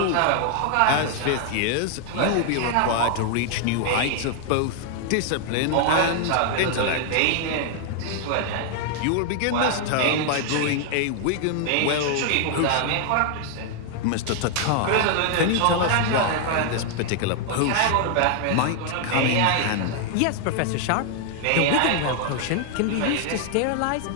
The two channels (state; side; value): different; both; correlation 0.00